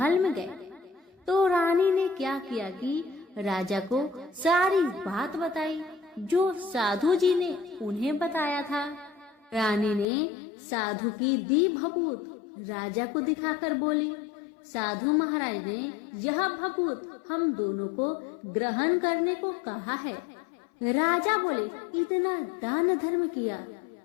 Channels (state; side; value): drops out; right; at 10.1 s